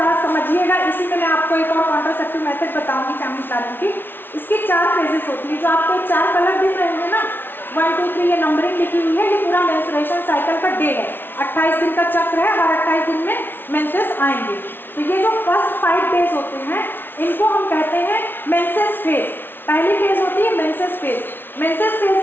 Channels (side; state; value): right; late; 0.10 ms